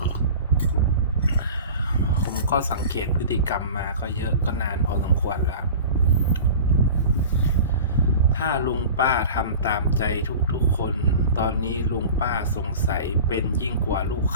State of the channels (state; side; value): inverted; both; correlation -0.37